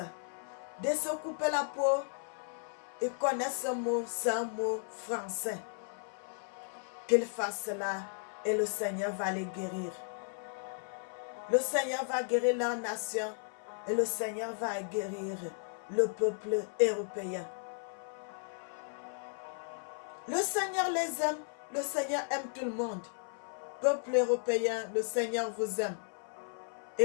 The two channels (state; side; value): silent; right; 55 dB below the other